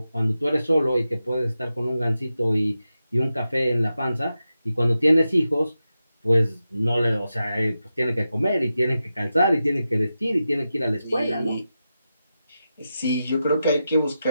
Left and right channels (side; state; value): both; inverted; correlation -0.90